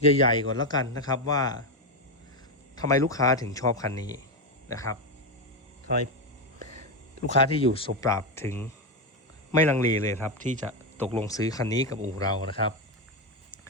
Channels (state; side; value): normal; both; correlation 0.09